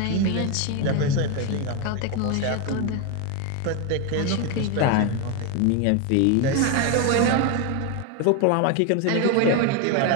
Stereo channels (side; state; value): both; different; correlation 0.02